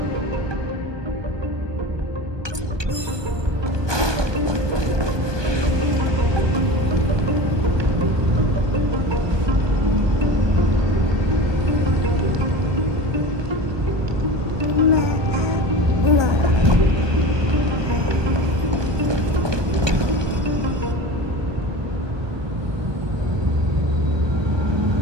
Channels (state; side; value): late; left; 1.2 ms